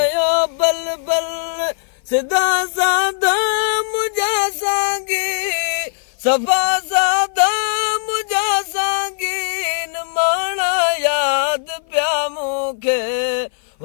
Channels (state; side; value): silent; right; 55 dB below the other